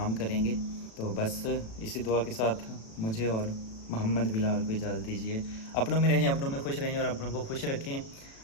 करेंगे। तो बस इसी दुआ के साथ मुझे और मोहम्मद बिलाल को इजाज़त दीजिए। अपनों में रहें, अपनों में खुश रहें और अपनों को खुश रखें,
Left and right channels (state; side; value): late; right; 36 ms